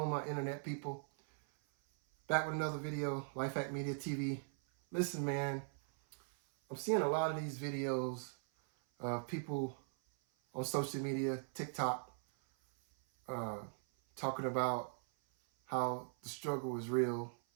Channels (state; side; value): silent; left; 51 dB below the other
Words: my internet people? Back with another video, Lifehack Media TV. Listen, man, I'm seeing a lot of these videos of people on social media, TikTok, talking about how the struggle is real.